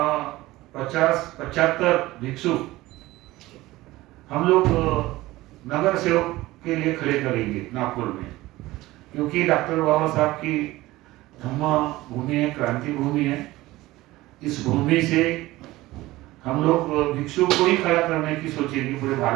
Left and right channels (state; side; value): quieter; left; 18.2 dB